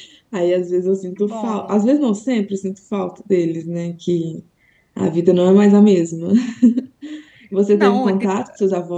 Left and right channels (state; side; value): identical; both; correlation 1.00